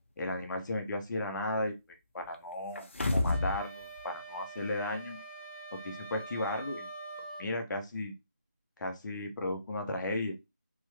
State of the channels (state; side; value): inverted; both; correlation -0.69